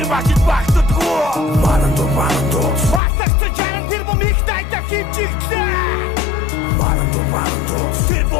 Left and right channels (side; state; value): right; drops out; at 3.0 s